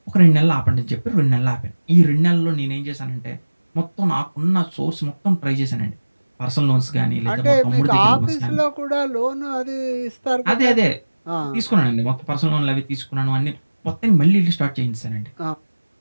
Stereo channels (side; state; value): both; inverted; correlation -1.00